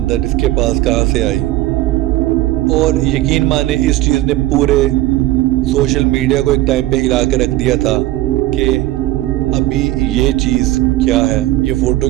اس کے پاس کہاں سے آئی۔ اور یقین مانے اس چیز نے پورے سوشل میڈیا کو ایک ٹائم پہ ہلا کے رکھ دیا تھا کہ ابھی یہ چیز کیا ہے، یہ فوٹو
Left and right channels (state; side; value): quieter; left; 16.7 dB